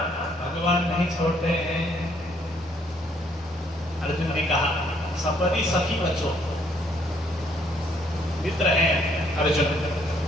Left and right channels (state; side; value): normal; both; correlation 0.67